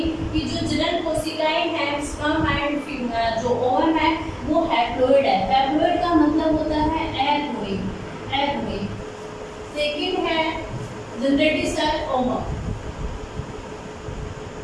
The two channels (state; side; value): identical; both; correlation 1.00